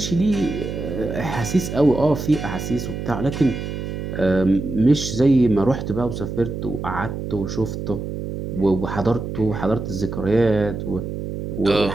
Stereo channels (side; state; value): right; noise; hum, 6 dB below the sound